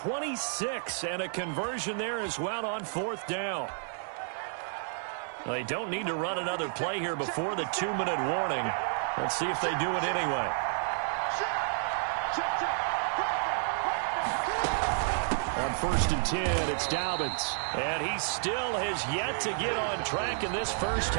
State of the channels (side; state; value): left; silent; 57 dB below the other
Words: and a conversion there as well on 4th down. They don't need to run another play here before the 2-minute warning. Let's see if they do it anyway. On 1st and 10, it's Dobbins. And he still has yet to get on track in this first